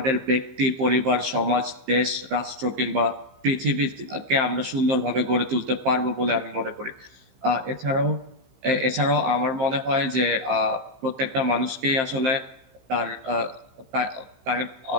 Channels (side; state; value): left; late; 15 ms